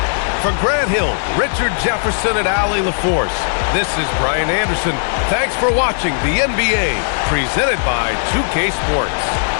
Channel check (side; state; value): right; silent; 67 dB below the other